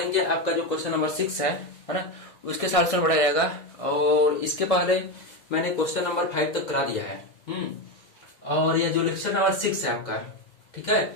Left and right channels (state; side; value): late; right; 1.6 ms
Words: आपका जो क्वेश्चन नंबर 6 है ना, उसके सॉल्यूशन बढ़ा जाएगा। और इसके पहले मैंने क्वेश्चन नंबर 5 तक करा दिया है। और ये जो लेक्चर नंबर 6 है आपका, ठीक है।